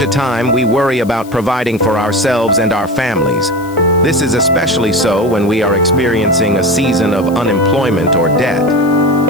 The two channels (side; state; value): left; noise; hiss, 22 dB below the sound